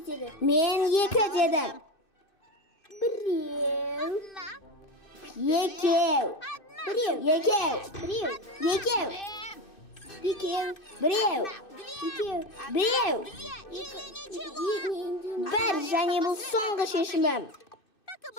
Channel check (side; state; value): right; late; 2.6 ms